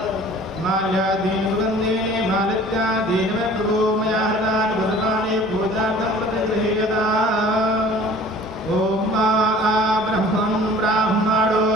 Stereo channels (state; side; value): normal; both; correlation 0.48